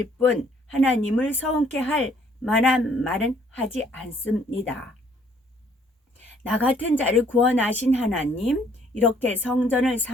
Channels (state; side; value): normal; both; correlation 0.63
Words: 뿐 하나님을 서운케 할 만한 말은 하지 않습니다. 나 같은 자를 구원하신 하나님, 이렇게 성전을